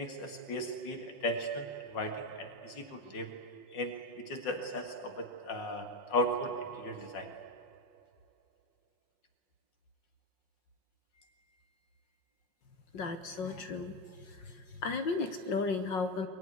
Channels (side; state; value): right; late; 5.5 ms